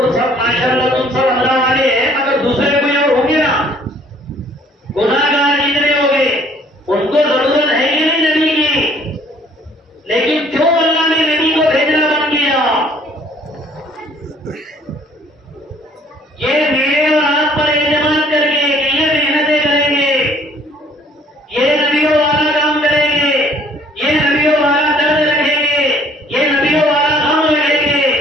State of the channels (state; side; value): normal; both; correlation 0.58